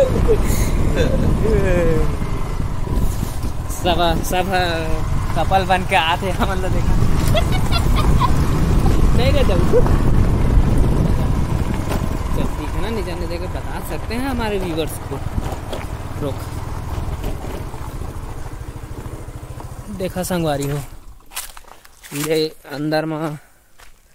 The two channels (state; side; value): identical; both; correlation 1.00